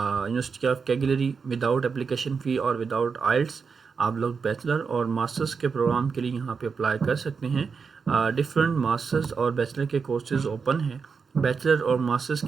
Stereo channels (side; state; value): left; quieter; 5.5 dB